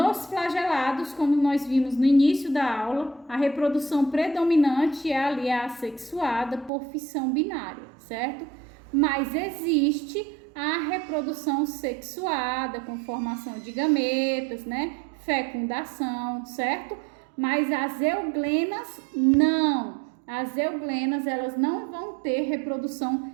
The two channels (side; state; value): left; drops out; at 6.7 s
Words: flagelados, como nós vimos no início da aula, a reprodução predominante é ali a assexuada por fissão binária, certo? Mas existe a reprodução sexuada com formação de gametas, né? Fecundação, certo? Mas as euglenas não. As euglenas, elas não vão ter reprodução